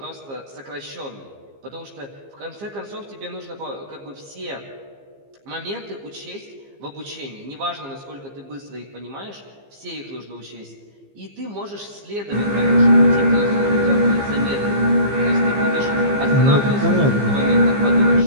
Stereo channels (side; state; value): left; late; 15 ms